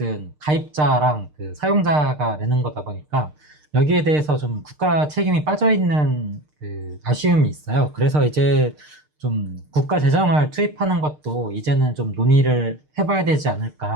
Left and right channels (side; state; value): left; late; 6.6 ms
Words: 가입자랑 그 사용자가 내는 거다 보니까 여기에 대해서 좀 국가 책임이 빠져 있는 그 아쉬움이 있어요. 그래서 이제 좀 국가 재정을 투입하는 것도 이제는 좀 논의를 해봐야 되지